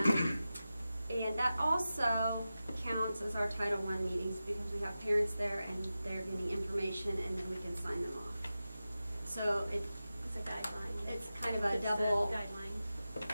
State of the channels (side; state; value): both; inverted; correlation -0.93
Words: And that also counts as our Title I meetings because we have parents there and they're getting information and then we can sign them off. So it's a guideline. It's kind of a double guideline